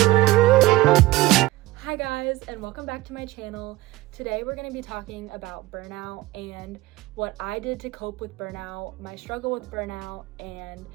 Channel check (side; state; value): left; quieter; 18.3 dB